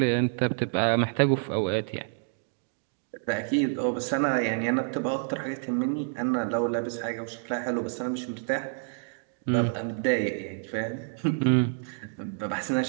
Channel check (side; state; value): left; silent; digital silence